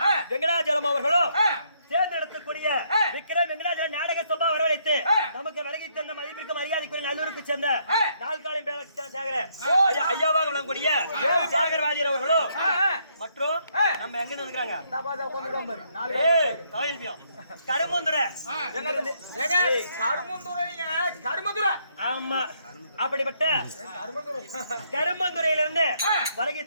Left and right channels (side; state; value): both; inverted; correlation -0.72